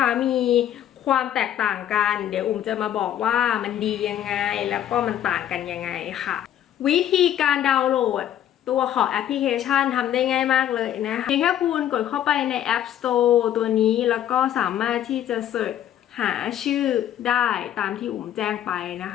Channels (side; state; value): right; quieter; 11.1 dB